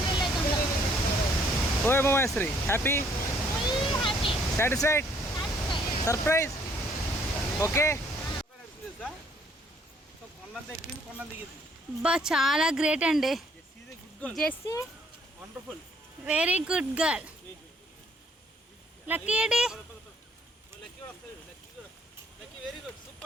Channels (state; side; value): normal; both; correlation 0.64